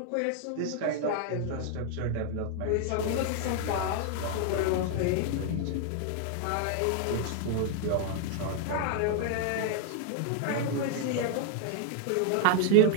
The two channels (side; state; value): both; different; correlation 0.00